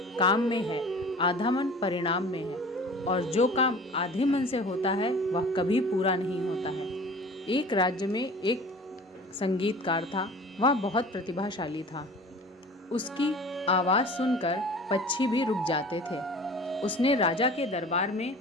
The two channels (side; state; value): both; normal; correlation 0.42